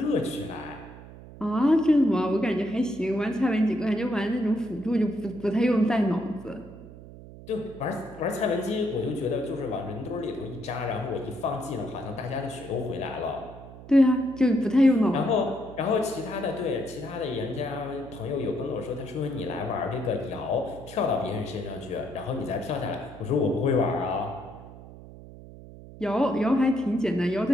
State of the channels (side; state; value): right; noise; hum, 16 dB below the sound